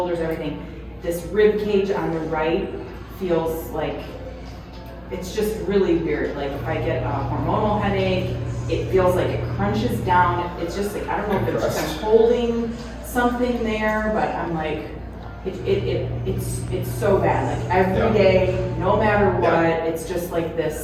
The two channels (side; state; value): both; identical; correlation 1.00